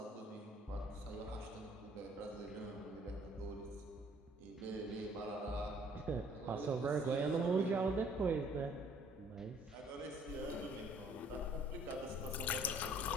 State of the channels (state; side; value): normal; both; correlation 0.59